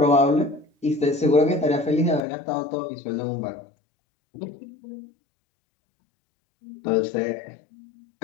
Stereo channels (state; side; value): drops out; right; at 2.2 s